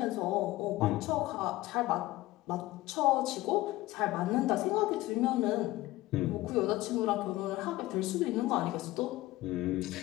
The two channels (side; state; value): right; quieter; 17.8 dB